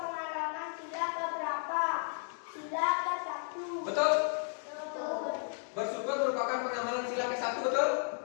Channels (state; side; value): silent; right; 55 dB below the other